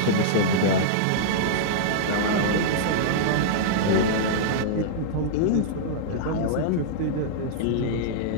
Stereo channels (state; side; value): different; both; correlation -0.02